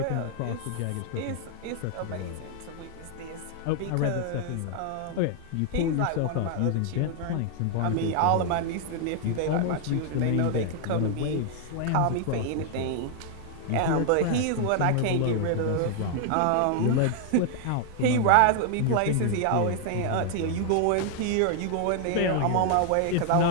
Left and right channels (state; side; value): different; both; correlation 0.00